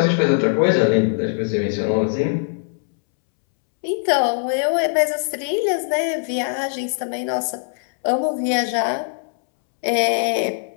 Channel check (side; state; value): right; silent; 65 dB below the other